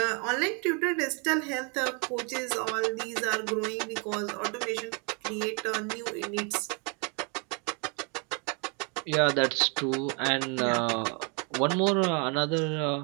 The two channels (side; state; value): left; quieter; 35.3 dB